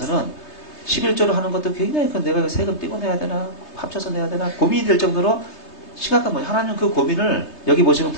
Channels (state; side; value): late; right; 3.3 ms